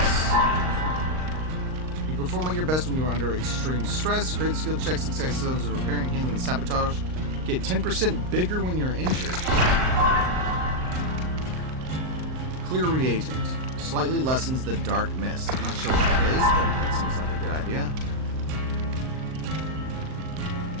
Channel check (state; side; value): late; left; 39 ms